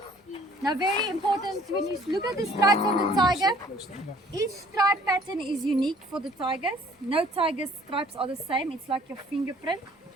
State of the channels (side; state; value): both; normal; correlation 0.56